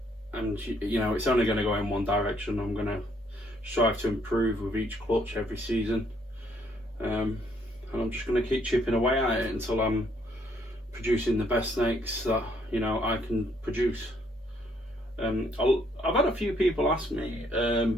you know, it's only going to go in one direction. I'm going to strive to improve with each clutch every season, and I'm just going to keep chipping away at it until I'm producing the best snakes that, you know, I can produce. I've had a few people ask me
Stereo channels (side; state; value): both; normal; correlation 0.69